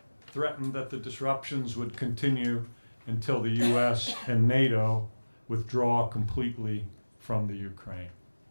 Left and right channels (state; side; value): inverted; both; correlation -1.00